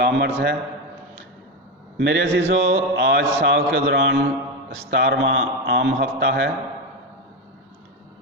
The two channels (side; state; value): both; normal; correlation 0.13